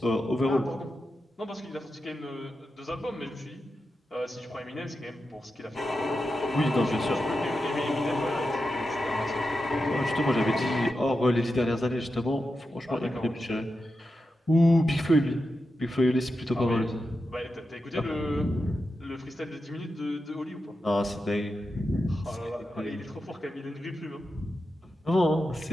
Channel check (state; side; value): normal; both; correlation 0.89